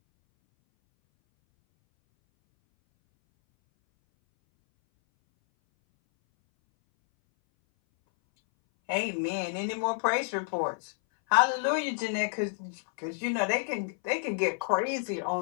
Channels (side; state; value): right; silent; 58 dB below the other